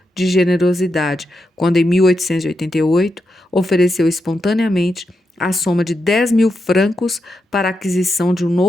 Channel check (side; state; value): both; normal; correlation 0.86